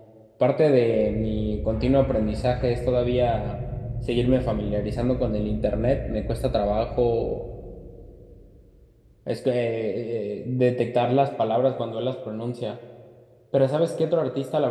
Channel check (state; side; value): identical; both; correlation 1.00